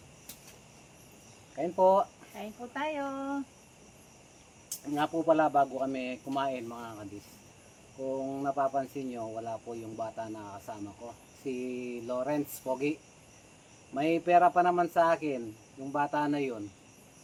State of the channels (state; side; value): identical; both; correlation 1.00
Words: Kain po. Kain po tayo. Nga po pala bago kami kumain mga kadis. Kung napapansin nyo, wala po yung bata na kasama ko. Si Lawrence Pogi. May pera pa naman sa akin. Yung bata na yun.